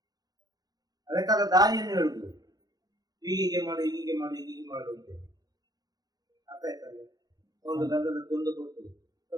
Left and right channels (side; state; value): left; late; 0.19 ms